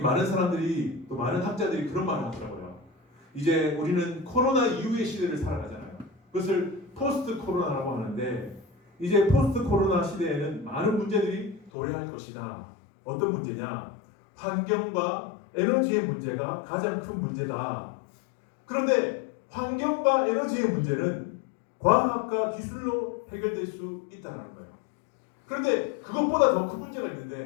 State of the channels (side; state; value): right; drops out; at 11.7 s